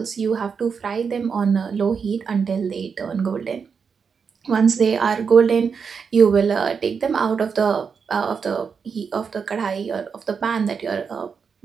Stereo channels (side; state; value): left; quieter; 6.0 dB